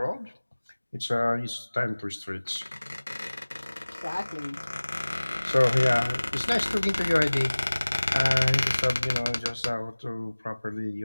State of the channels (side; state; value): both; inverted; correlation -1.00